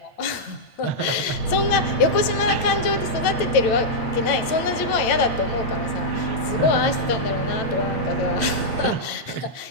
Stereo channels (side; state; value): right; late; 9.0 ms